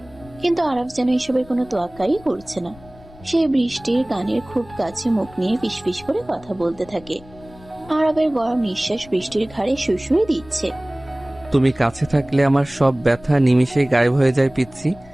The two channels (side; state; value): left; noise; rumble, 21 dB below the sound